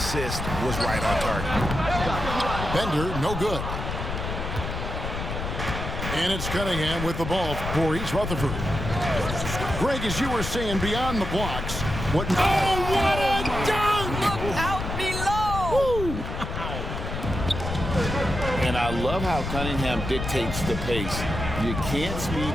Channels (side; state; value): left; noise; rumble, 5 dB below the sound